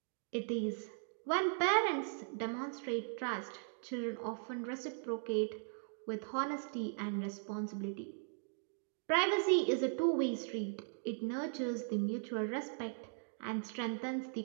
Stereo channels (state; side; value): silent; left; digital silence